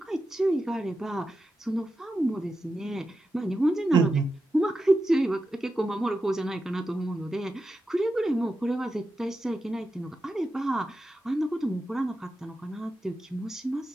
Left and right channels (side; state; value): both; normal; correlation 0.90